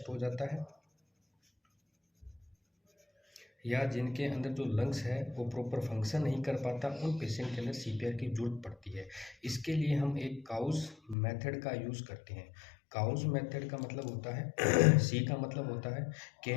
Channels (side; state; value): right; drops out; at 11.2 s